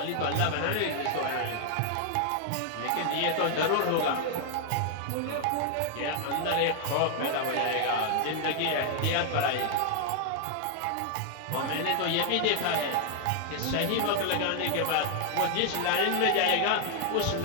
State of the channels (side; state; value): both; different; correlation 0.00